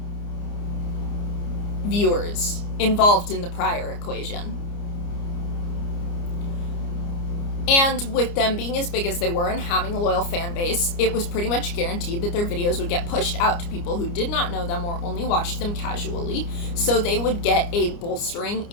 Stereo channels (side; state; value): right; late; 29 ms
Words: viewers involved in the prior equation. And with them being as big as they were and having a loyal fan base, it was pretty much guaranteed that their videos would get pushed out to people who did not know them or only watched them casually, so they would get a bolstering